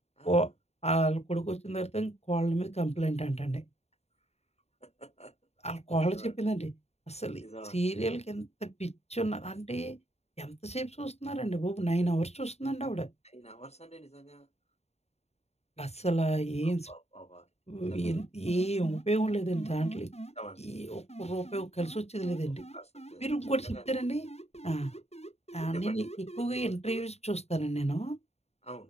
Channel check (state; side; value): late; right; 0.31 ms